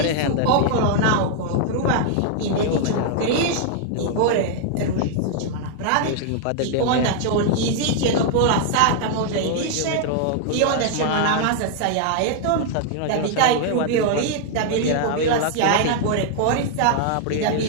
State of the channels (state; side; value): different; both; correlation 0.00